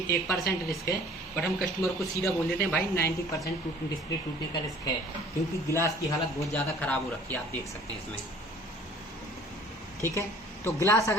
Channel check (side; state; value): both; normal; correlation 0.51